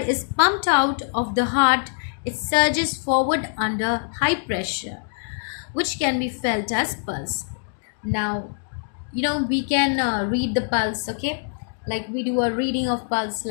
is pumped out of the heart? It surges forward under high pressure, which can be felt as pulse. Now, we can read the pulse, okay, like we do a reading of pulse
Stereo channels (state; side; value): silent; right; digital silence